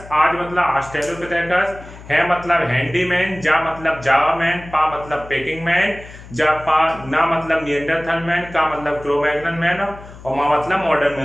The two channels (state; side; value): noise; left; hum, 17 dB below the sound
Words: आज मतलब ऑस्ट्रेलोपिथेकस, है मतलब हैंडीमैन, जा मतलब जावामैन, पा मतलब पेकिंग मैन, ना मतलब निएंडरथल मैन, का मतलब क्रो-मैग्नन मैन और मा मतलब मॉडर्न